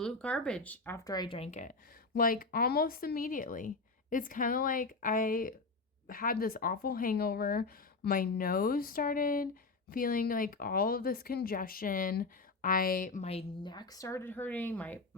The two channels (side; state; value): right; quieter; 3.8 dB